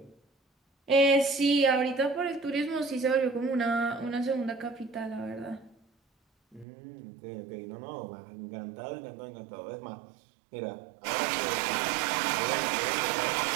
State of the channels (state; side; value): drops out; left; at 6.7 s